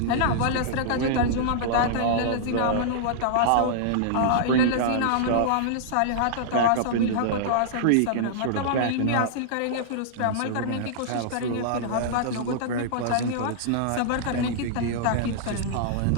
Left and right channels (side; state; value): both; different; correlation -0.02